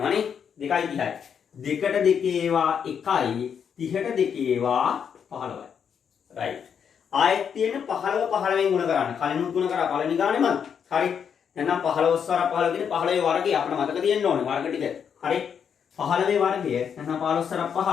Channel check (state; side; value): quieter; right; 7.5 dB